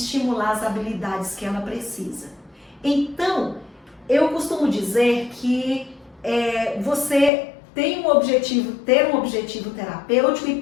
as habilidades que ela precisa. Então, eu costumo dizer que você tem um objetivo, ter um objetivo terapêutico e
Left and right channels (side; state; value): right; drops out; at 7.3 s